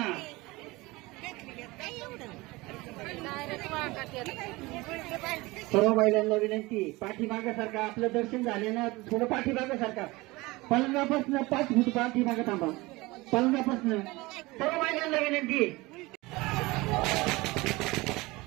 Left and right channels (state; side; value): quieter; left; 21.9 dB